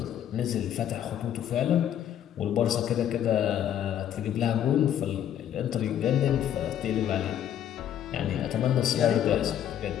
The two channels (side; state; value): right; quieter; 10.3 dB